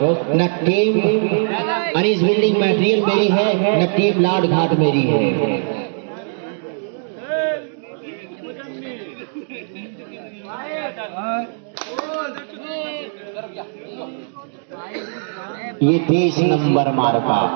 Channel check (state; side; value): silent; left; digital silence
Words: न टीम अनीस बिल्डिंग मटेरियल मेरी है, न टीम लाड घाट मेरी है। ये 30 नंबर मार्का